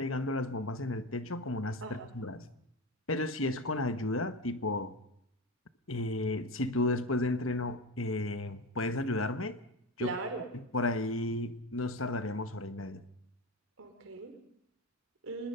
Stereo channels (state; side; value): normal; both; correlation 0.22